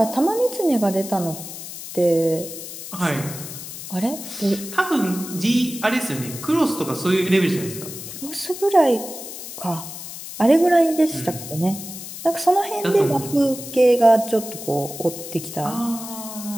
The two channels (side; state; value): left; noise; hiss, 11 dB below the sound